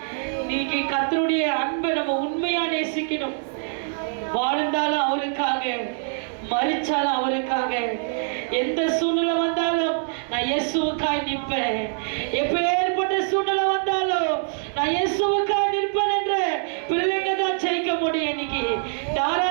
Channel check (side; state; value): left; silent; digital silence